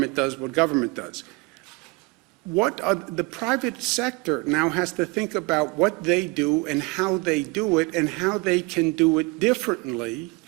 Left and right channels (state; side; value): quieter; left; 26.6 dB